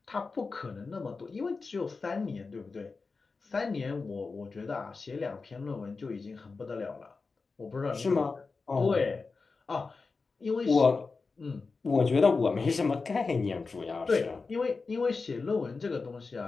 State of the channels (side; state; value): right; quieter; 4.3 dB